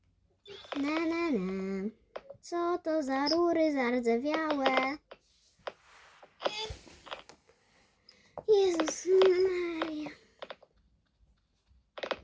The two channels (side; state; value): both; identical; correlation 1.00